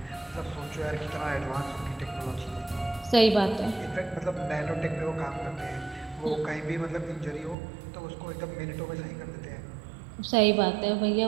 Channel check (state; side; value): drops out; left; at 7.6 s